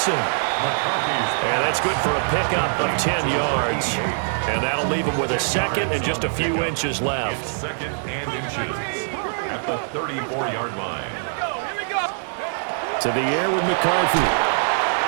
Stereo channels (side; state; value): left; silent; digital silence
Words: And that's good for a pickup of 10 yards. And that'll leave him with a 2nd and just a few inches left. 2nd and inches at the 34-yard line. To the air with McCarthy.